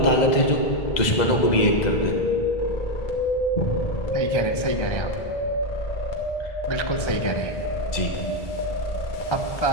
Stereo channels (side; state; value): right; late; 2.0 ms